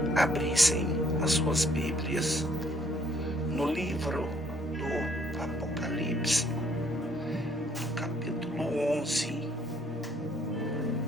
abrissem as suas Bíblias no livro do Apocalipse, no capítulo 11.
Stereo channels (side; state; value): both; normal; correlation 0.65